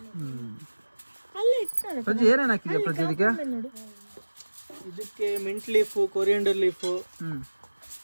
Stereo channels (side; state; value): both; inverted; correlation -1.00